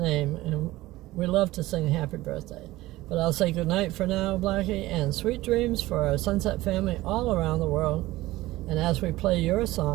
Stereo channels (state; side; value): quieter; left; 17.8 dB